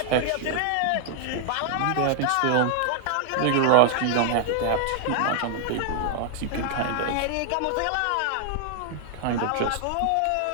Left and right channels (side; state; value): both; different; correlation -0.01